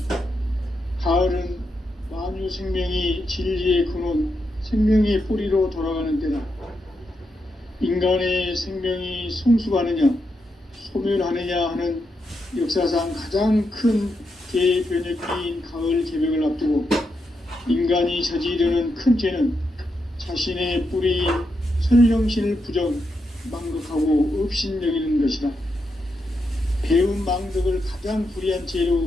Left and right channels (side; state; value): both; normal; correlation 0.84